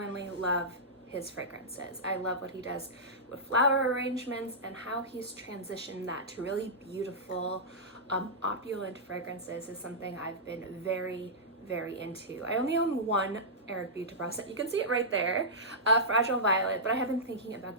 love his fragrances. I love what he does with flower arrangements and how he's transitioned that to really beautiful, opulent fragrances is something I've been very into. I only own one Eric Buterbaugh scent. You can see it right there, Fragile Violet, but I have been thinking about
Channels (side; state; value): both; normal; correlation -0.14